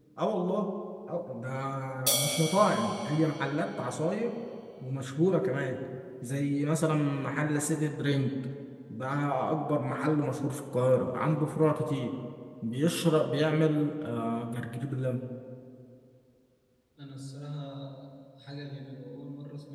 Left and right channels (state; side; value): identical; both; correlation 1.00